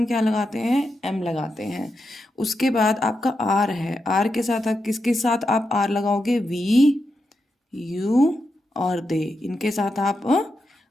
क्या लगाते हैं? एम लगाते हैं। उसके बाद आपका आर है, आर के साथ आप किसके साथ आप आर लगाओगे? वी, यू और दे, इनके साथ आप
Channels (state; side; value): normal; both; correlation 0.86